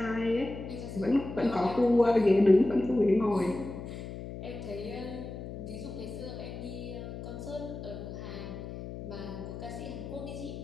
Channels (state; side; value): noise; left; hum, 9 dB below the sound